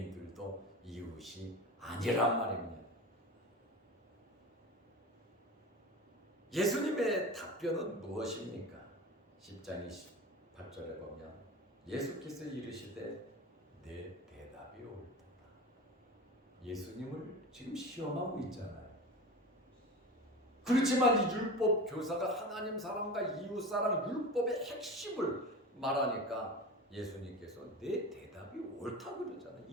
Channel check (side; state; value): both; normal; correlation 0.30